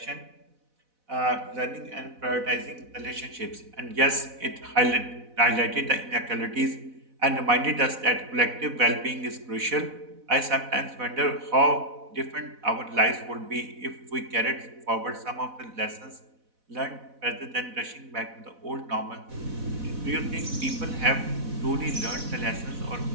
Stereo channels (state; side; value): late; left; 4.1 ms